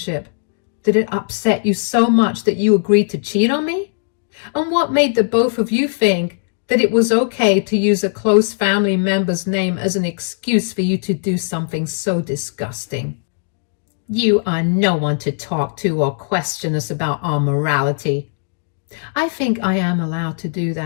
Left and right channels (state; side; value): silent; right; digital silence